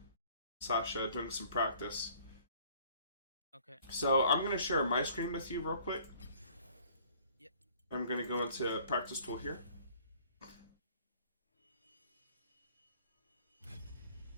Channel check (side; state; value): both; inverted; correlation -0.55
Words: Sasha, doing some practice. Okay. So I'm going to share my screen with you real quick. Yep. I'm going to go into practice tool here.